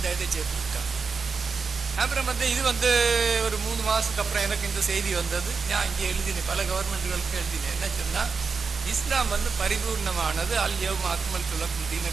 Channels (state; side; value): quieter; left; 5.1 dB